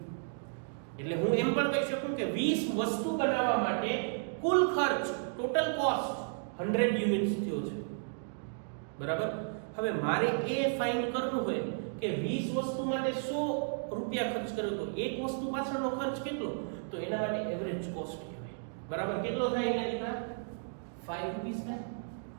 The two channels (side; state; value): left; silent; digital silence